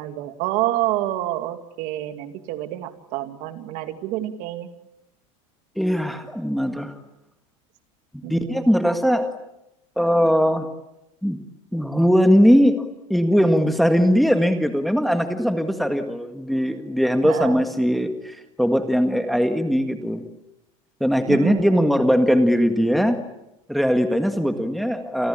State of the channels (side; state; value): both; normal; correlation 0.91